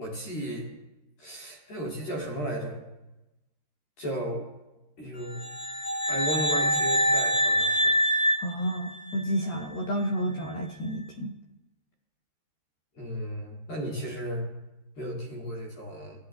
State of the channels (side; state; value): right; late; 13 ms